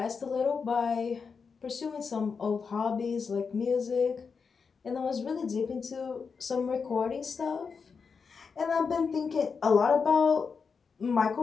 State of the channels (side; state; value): right; quieter; 5.5 dB